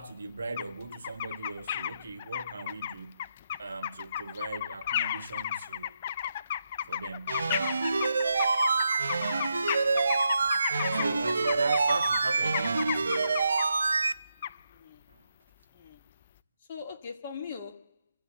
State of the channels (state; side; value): inverted; both; correlation -0.82